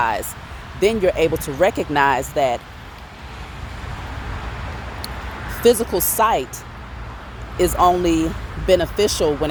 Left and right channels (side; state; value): both; identical; correlation 1.00